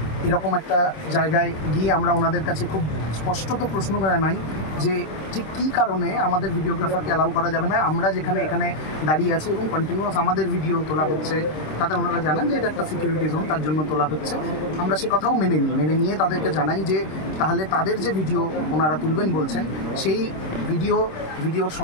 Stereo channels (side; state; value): right; late; 26 ms